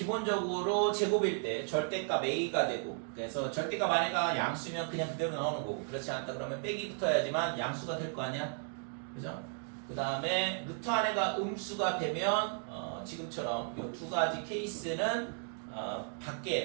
제곱일 때 절대값 A가 되고 그래서 절대값 안에가 양수면 그냥 그대로 나오는 거고 그렇지 않다 그러면 빼기 붙어야지만 양수가 될 거 아니야. 그죠? 그 다음에 루트 안에가 음수가 되면 지금처럼 이 두 가지 케이스는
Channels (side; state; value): left; silent; 55 dB below the other